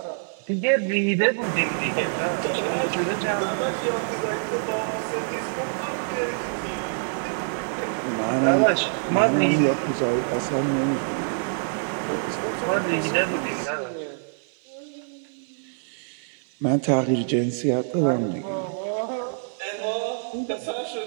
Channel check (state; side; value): silent; left; 57 dB below the other